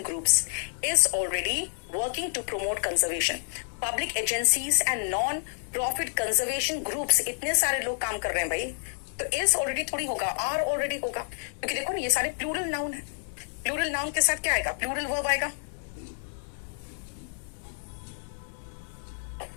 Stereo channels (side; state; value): right; silent; 59 dB below the other